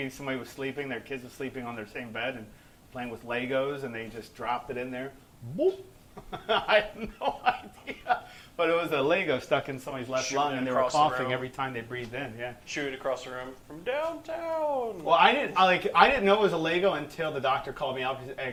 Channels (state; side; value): identical; both; correlation 1.00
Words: somebody was sleeping. Their kids were sleeping on their same bed and playing with Legos, and they just dropped it in there. Boop. I have no idea. But it was a Lego stuck in somebody's left lung, and they were coughing every time they breathed in. Yeah. Shoot across the room from downtown. Well, I didn't know it was a Lego until the doctor called me up